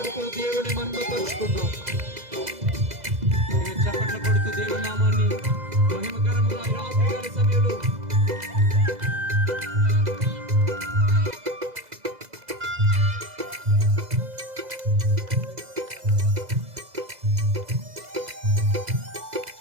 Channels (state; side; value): late; left; 2.0 ms